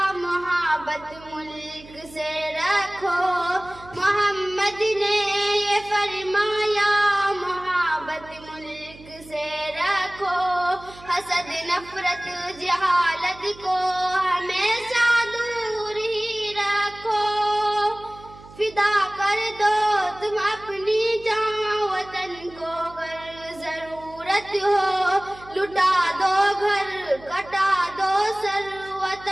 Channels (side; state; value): right; noise; hum, 20 dB below the sound